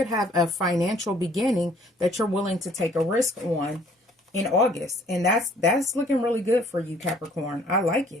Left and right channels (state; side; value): normal; both; correlation 0.59